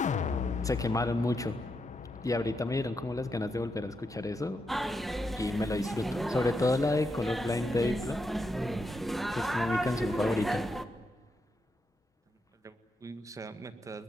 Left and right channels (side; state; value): both; normal; correlation 0.83